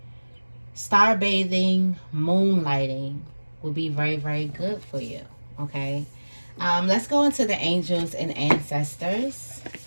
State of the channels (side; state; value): both; inverted; correlation -1.00